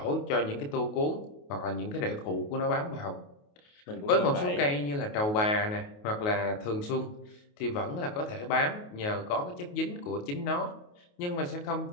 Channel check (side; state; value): right; late; 28 ms